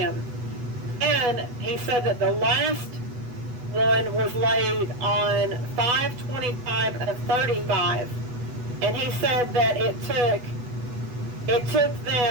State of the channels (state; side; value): late; left; 8.2 ms